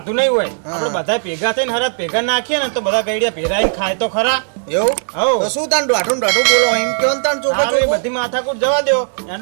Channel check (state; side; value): silent; left; digital silence